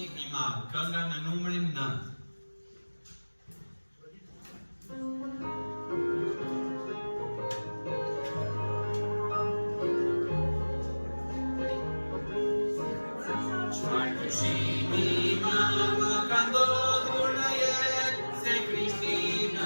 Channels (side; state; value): both; inverted; correlation -1.00